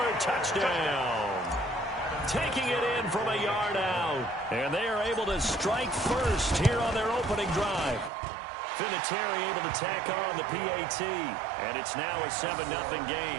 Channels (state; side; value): drops out; left; at 8.1 s